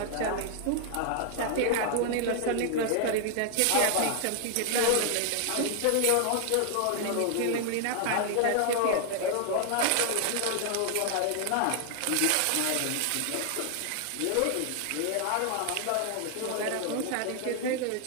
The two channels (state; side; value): different; both; correlation 0.00